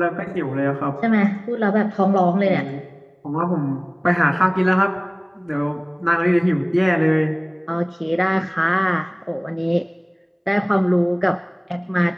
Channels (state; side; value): identical; both; correlation 1.00